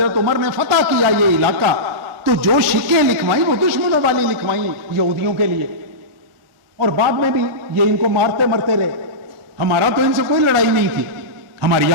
عمر نے فتح کیا یہ علاقہ, تو جو شکیں لکھوائیں وہ دشمنوں والی لکھوائیں یہودیوں کے لیے, اور بعد میں بھی یہ ان کو مارتے مرتے رہے. ہمارا تو ان سے کوئی لڑائی نہیں تھی, ہماری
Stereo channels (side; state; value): left; late; 1.4 ms